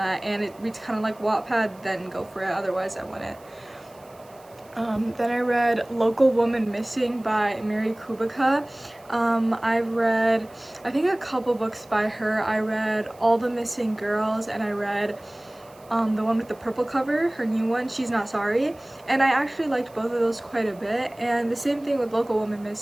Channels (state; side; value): noise; right; hiss, 28 dB below the sound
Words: and it reads kind of like Wattpad, then go for it. Otherwise, I wouldn't. Then I read Local Woman Missing by Mary Kubica. I've read, I think, a couple books by her. I read All the Missing Girls, and I read the one with the purple cover, her new one, She's Not Sorry, and I actually liked both of those quite a bit. And the same thing with Local Woman